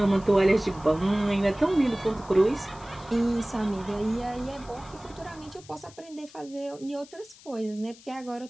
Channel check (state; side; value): noise; left; hiss, 22 dB below the sound